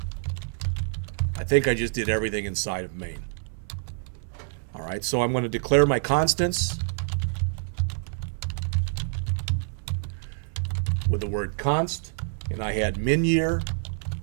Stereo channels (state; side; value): silent; left; 58 dB below the other